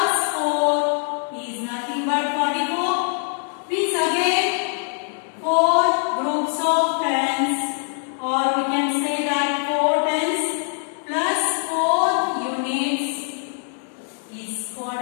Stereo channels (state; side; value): silent; right; 58 dB below the other